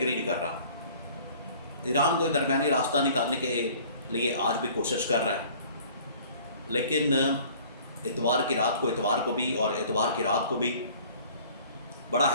نہیں کر رہا۔ ایران کو درمیانی راستہ نکالنے کے لیے آج بھی کوشش کر رہا ہے، لیکن اتوار کی رات کو بھی اور اتوار کی رات کو بھی بڑا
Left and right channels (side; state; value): both; inverted; correlation -0.51